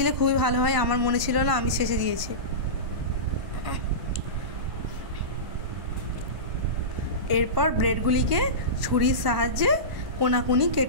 খুবই ভালো হয়, আমার মনে ছিল না, আমি শেষে দিয়েছি। এরপর ব্রেডগুলিকে ছুরির সাহায্যে কোনাকুনি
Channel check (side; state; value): left; late; 1.0 ms